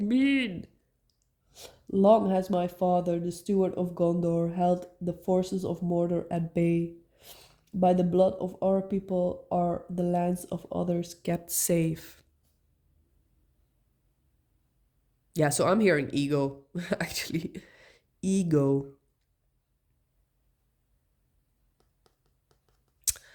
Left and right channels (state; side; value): identical; both; correlation 1.00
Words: mean? Long has my father, the steward of Gondor, held the forces of Mordor at bay. By the blood of our people are the lands of others kept safe. Yeah, so I'm hearing ego, actually. Ego.